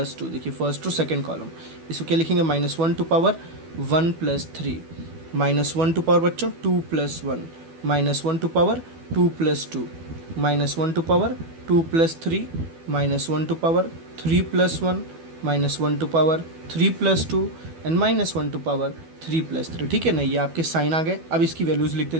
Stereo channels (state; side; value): late; left; 12 ms